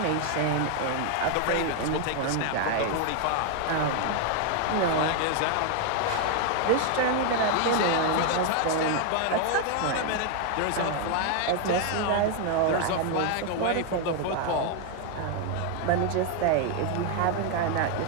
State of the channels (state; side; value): different; both; correlation 0.00